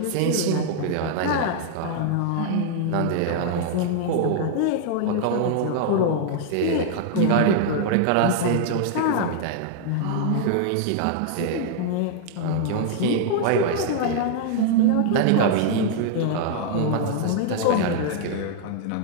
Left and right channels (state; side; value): different; both; correlation -0.01